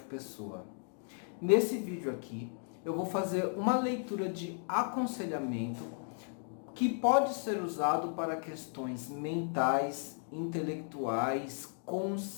Pessoa. Nesse vídeo aqui eu vou fazer uma leitura de aconselhamento que pode ser usado para questões mentais, intelectuais,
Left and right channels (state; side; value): silent; right; 54 dB below the other